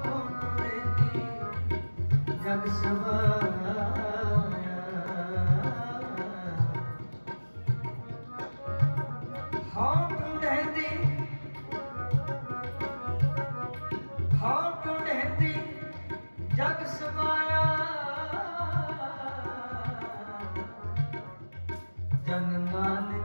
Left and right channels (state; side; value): inverted; both; correlation -1.00